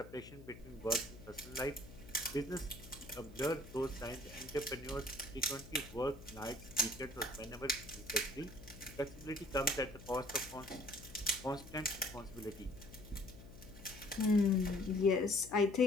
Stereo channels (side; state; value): left; noise; hum, 16 dB below the sound